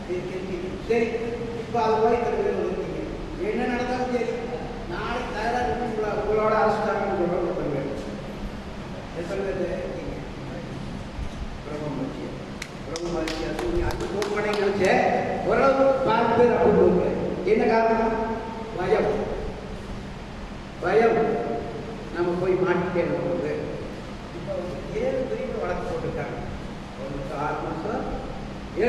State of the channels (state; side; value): identical; both; correlation 1.00